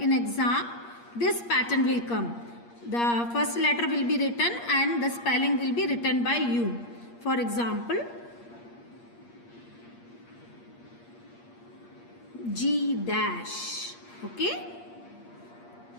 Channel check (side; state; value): right; late; 8.5 ms